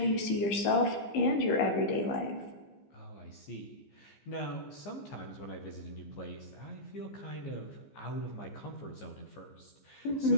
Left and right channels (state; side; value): late; right; 15 ms